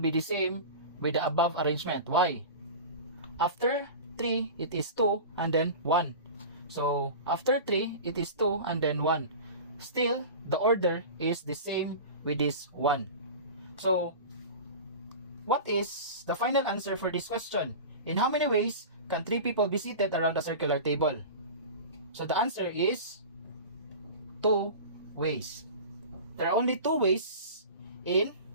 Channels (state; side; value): inverted; both; correlation -0.33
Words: the same with the above arrangement. Why? After 3, it is 2 and then 1. So, after 3, it is 2 and then 1. Still, the order is the same with this 1. So, what is the final answer for this question? In how many ways can 3 people be seated around a circular table? So, the answer is 2 ways. There are only 2 ways in